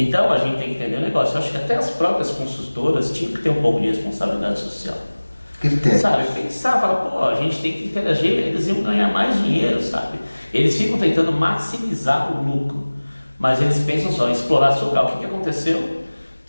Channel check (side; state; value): both; inverted; correlation -1.00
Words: a gente tem que entender o negócio. Eu acho que até as próprias construtoras tinham que ter um pouco de responsabilidade social. Critério. Sabe, pensar, falar, a gente tem que interagir, eles iam ganhar mais dinheiro, sabe? Eles ficam tentando maximizar o lucro, mas eles pensam só em explorar seu local. O que aconteceu?